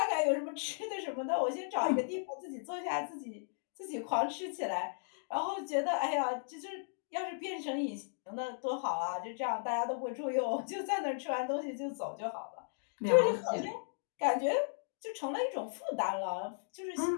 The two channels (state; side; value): silent; right; digital silence